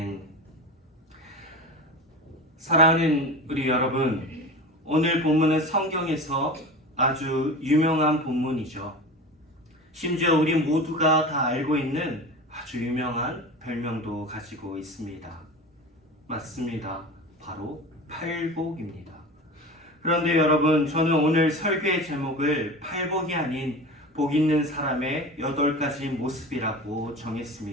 사랑하는 우리 여러분, 오늘 본문은 성경에서 아주 유명한 본문이죠. 심지어 우리 모두가 다 알고 있는 아주 유명한 별명도 가지고 있습니다. 맞습니다. 바로 팔복입니다. 그런데 여러분, 저는 오늘 설교의 제목을 팔복이 아닌 복 있는 사람의 8가지 모습이라고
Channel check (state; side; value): normal; both; correlation 0.31